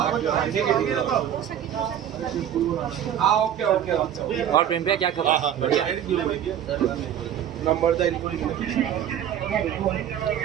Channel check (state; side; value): quieter; left; 10.1 dB